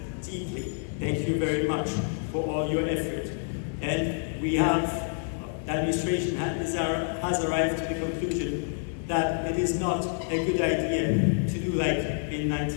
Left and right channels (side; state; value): right; silent; 59 dB below the other